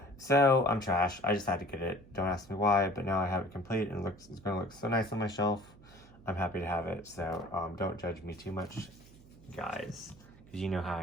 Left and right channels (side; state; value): right; noise; hum, 23 dB below the sound